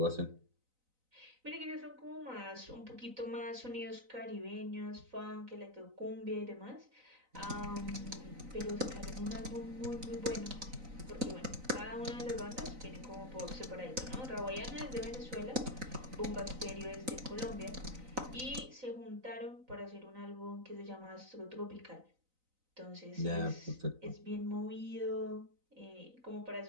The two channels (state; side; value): late; left; 4.0 ms